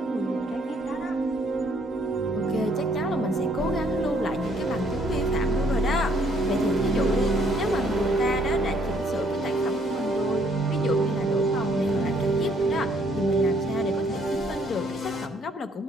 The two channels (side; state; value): both; normal; correlation 0.65